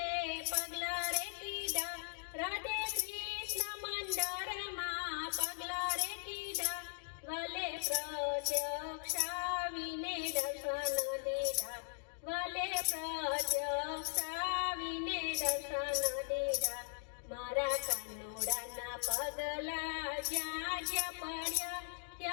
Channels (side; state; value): right; silent; digital silence